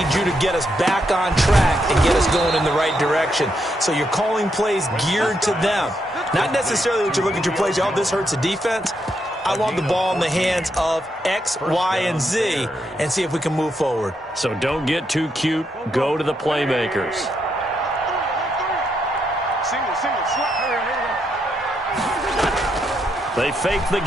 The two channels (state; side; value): normal; both; correlation 0.79